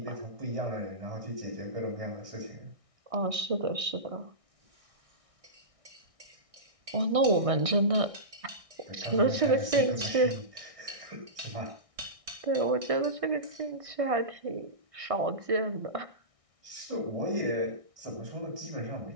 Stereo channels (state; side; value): late; left; 1.6 ms